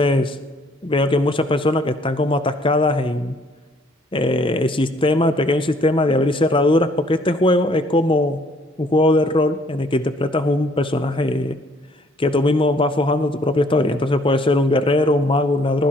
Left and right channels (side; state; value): both; normal; correlation 0.62